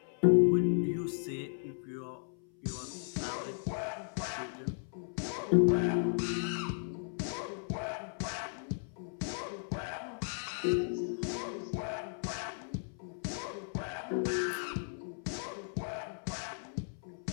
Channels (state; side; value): silent; right; 54 dB below the other